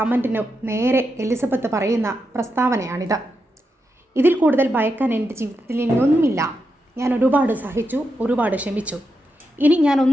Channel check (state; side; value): normal; both; correlation 0.86